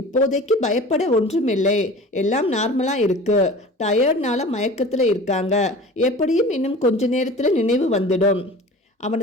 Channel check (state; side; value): normal; both; correlation 0.40